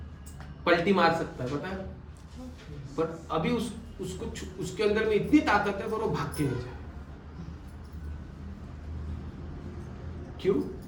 पलटी मार सकता है, पता है। पर अभी उसके अंदर में इतनी ताकत है पर वो भाग के नहीं जाए। क्यों?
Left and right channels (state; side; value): identical; both; correlation 1.00